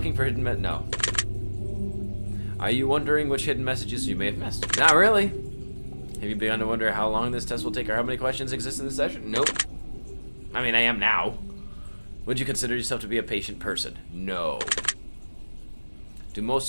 for hidden... No. Are you wondering which hidden messages you may have missed? Not really. Have you begun to wonder how long this test will take or how many questions exist in this session? Nope. I mean, I am now. Would you consider yourself to be a patient person? No. Do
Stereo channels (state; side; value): inverted; both; correlation -1.00